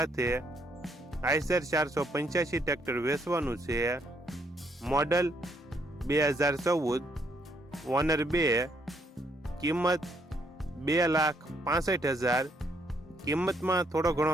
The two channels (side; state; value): both; normal; correlation 0.71